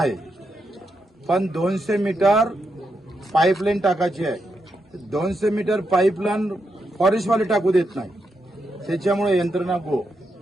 पण 200 मीटर पाईपलाईन टाकायची आहे. 200 मीटर पाईपलाईन फॉरेस्टवाले टाकू देत नाही. त्याच्यामुळे यंत्रणा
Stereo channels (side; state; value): both; normal; correlation 0.83